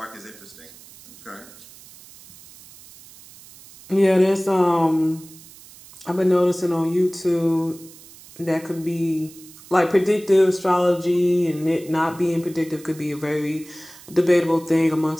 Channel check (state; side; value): noise; right; hiss, 21 dB below the sound